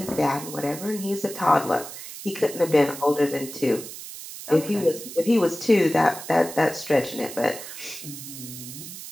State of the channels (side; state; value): right; noise; hiss, 12 dB below the sound